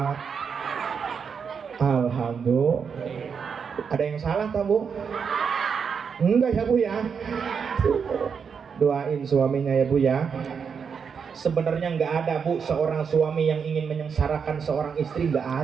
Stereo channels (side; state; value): left; quieter; 6.4 dB